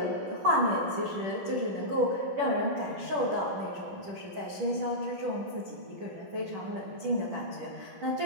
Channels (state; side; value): late; left; 10 ms